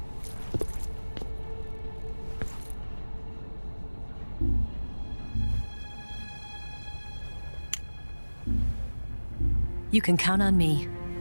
You can count on me.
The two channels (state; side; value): inverted; both; correlation -1.00